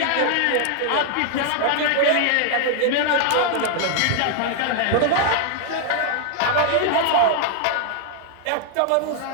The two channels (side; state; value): both; different; correlation 0.00